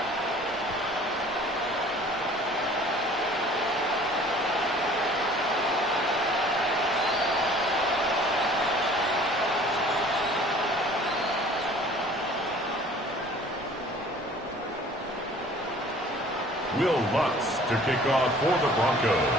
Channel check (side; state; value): both; normal; correlation 0.50